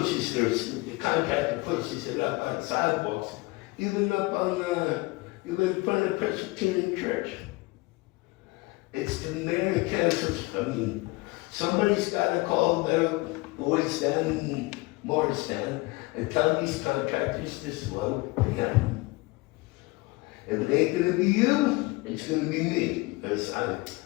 the contractor pushes it up on sidewalks, even up on, even in front of Presbyterian Church. It's the mayor and council, somebody's gotta call the boys down in Morristown and tell these contractors to slow down. If it ain't gonna be you, it's gonna be me, because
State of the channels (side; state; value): right; quieter; 23.5 dB